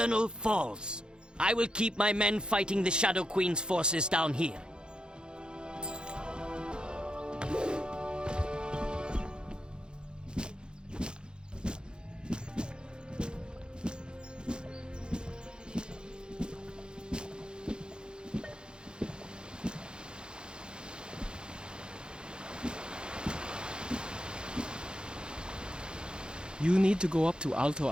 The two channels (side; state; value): left; late; 0.049 ms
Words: Falls. I will keep my men fighting the Shadow Queen's forces down here. You need to go up to Alto